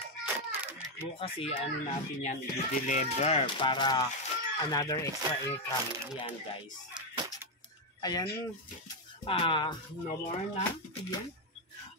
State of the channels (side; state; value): both; normal; correlation 0.03